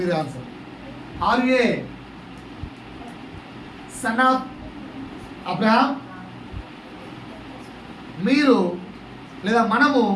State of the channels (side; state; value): both; identical; correlation 1.00